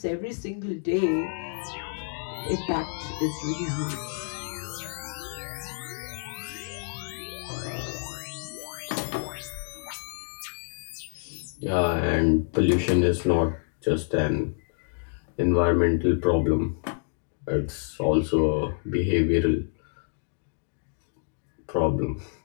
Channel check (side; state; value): right; silent; digital silence